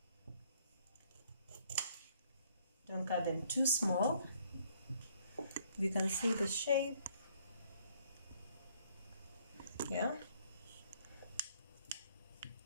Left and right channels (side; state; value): both; inverted; correlation -0.64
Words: don't cut them too small. You can see the shape. Yeah.